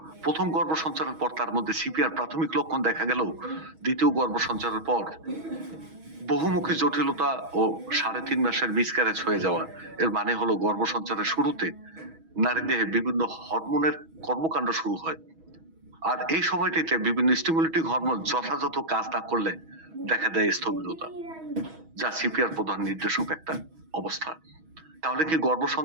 প্রথম গর্ভ সঞ্চারের পর তার মধ্যে সিপিআর প্রাথমিক লক্ষণ দেখা গেল, দ্বিতীয় গর্ভ সঞ্চারের পর বহুমুখী জটিলতা ও 3.5 মাসের মিসক্যারেজ হয়ে যাওয়া। এর মানে হলো গর্ভ সঞ্চারের শুরুতে নারী দেহে বিভিন্ন হরমোনের কর্মকাণ্ড শুরু হয়, আর এই সময়টিতে বিভিন্ন স্টিমুলেটিং হরমোন যথাযথ কাজ না করলে দেখা দেয় স্থবিরতা, যা সিপিআর প্রধান নির্দেশক একটা অবস্থা। তাহলে কি গর্ভ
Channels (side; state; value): left; late; 6.2 ms